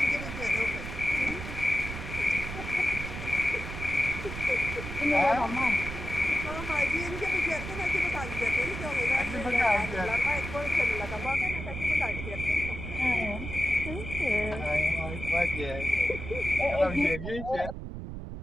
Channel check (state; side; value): noise; right; rumble, 8 dB below the sound